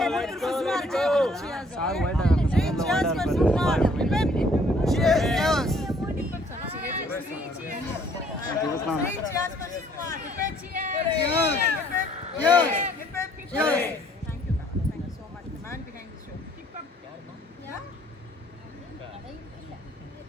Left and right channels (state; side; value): normal; both; correlation 0.62